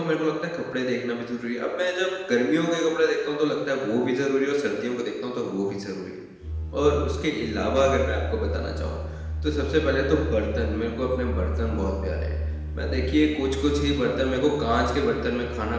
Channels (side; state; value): both; identical; correlation 1.00